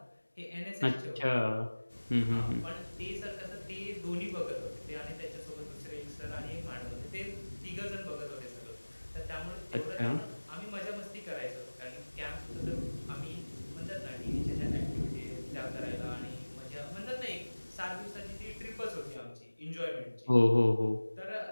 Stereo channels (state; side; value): inverted; both; correlation -1.00